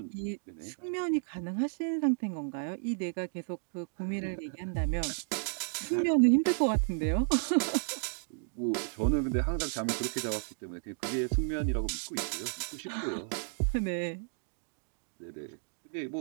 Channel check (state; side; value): silent; left; digital silence